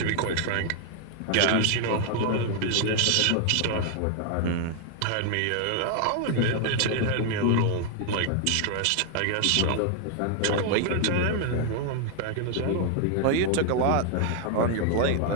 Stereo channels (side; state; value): both; different; correlation 0.00